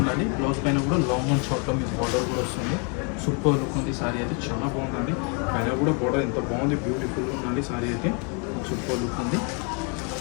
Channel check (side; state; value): right; quieter; 36.5 dB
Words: బ్లౌజ్ పైన కూడా లాంగ్ అండ్ షార్ట్లో మీకు బార్డర్ కూడా వస్తుంది. సూపర్ లుక్ ఉంది సారీ అయితే, చాలా బాగుందండి. పైన కూడా బార్డర్ ఎంత బాగుంది, బ్యూటిఫుల్గా ఉందండి సారీ అయితే. సూపర్ లుక్ ఉంది.